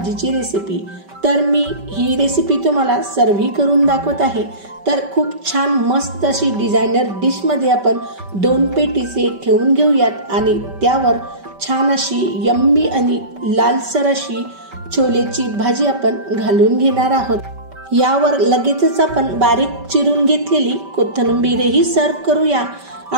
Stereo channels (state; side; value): late; left; 5.2 ms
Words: रेसिपी। तर मी ही रेसिपी तुम्हाला सर्व्ह करून दाखवत आहे। तर खूप छान मस्त अशी डिझायनर डिश मध्ये आपण 2 पेटीसे ठेवून घेऊयात आणि त्यावर छान अशी यम्मी आणि लालसर अशी छोलेची भाजी आपण घालून घेणार आहोत। यावर लगेचच आपण बारीक चिरून घेतलेली कोथिंबीरही सर्व्ह करूया